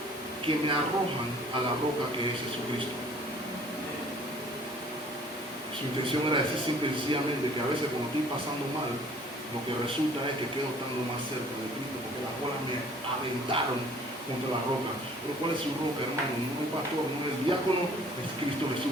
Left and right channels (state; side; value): normal; both; correlation 0.54